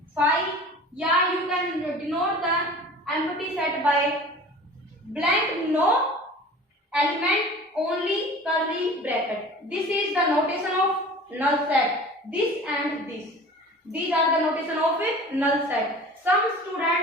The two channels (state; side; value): normal; both; correlation 0.41